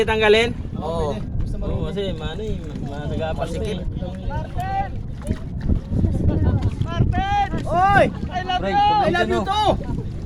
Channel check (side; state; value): both; identical; correlation 1.00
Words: tanggalin? Oo. Oo, kasi mano eh, masagapasikip. Oy! I love you! I love you too!